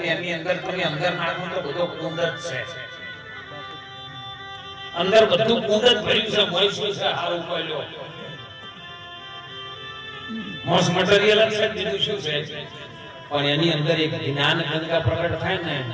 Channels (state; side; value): identical; both; correlation 1.00